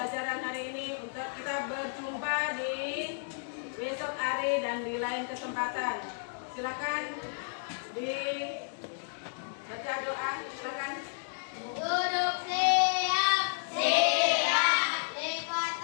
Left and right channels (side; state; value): right; silent; digital silence